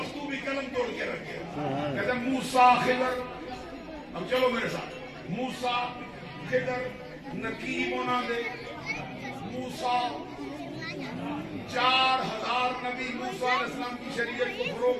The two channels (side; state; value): both; identical; correlation 1.00